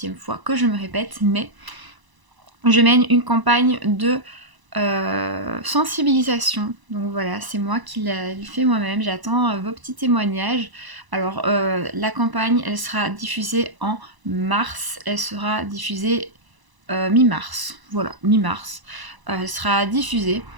fois que je me répète, mais je mène une campagne de sensibilisation. Donc voilà, c'est moi qui l'ai fait moi-même. J'attends vos petits témoignages. Alors la campagne, elle sera diffusée en mars. Elle sera diffusée mi-mars. Voilà, mi-mars. Elle sera diffusée.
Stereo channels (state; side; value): late; left; 1.0 ms